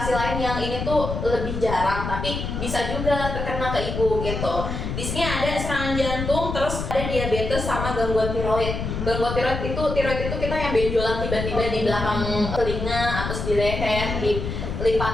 lain yang ini tuh lebih jarang, tapi bisa juga terkena ke ibu gitu. Di sini ada serangan jantung, terus ada diabetes sama gangguan tiroid. Gangguan tiroid itu kita yang benjolan tiba-tiba di belakang telinga, atau di leher, di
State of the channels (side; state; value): left; noise; rumble, 4 dB below the sound